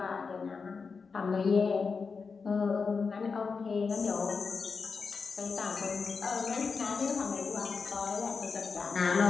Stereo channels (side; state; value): right; quieter; 5.0 dB